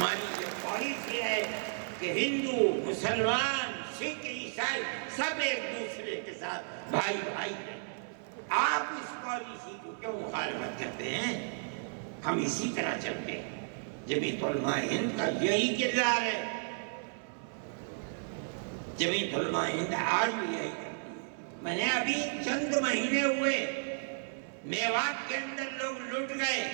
یہ پالیسی ہے کہ ہندو مسلمان سکھ عیسائی سب ایک دوسرے کے ساتھ بھائی بھائی ہیں۔ آپ اس پالیسی کو کیوں مخالفت کرتے ہیں؟ ہم اسی طرح چلتے ہیں۔ جمعیت علماء ہند کا یہی کردار ہے، جمعیت علماء ہند آج بھی یہی کرتی ہے۔ میں نے ابھی چند مہینے ہوئے، میوات کے اندر لوگ لٹ گئے،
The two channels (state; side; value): silent; left; 55 dB below the other